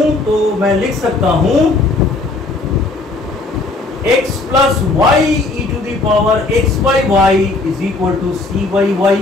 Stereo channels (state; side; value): quieter; right; 3.3 dB